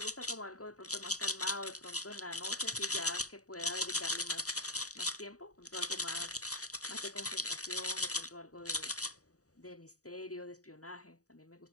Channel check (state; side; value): late; right; 0.66 ms